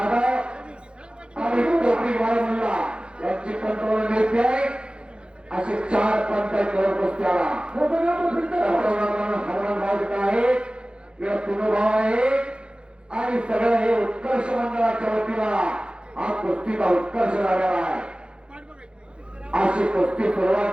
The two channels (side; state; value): left; late; 0.054 ms